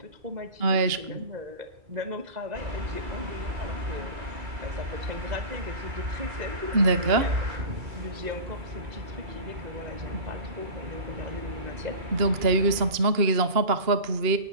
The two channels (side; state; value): left; late; 2.8 ms